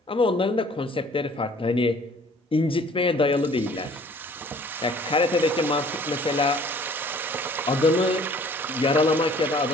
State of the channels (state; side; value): normal; both; correlation 0.54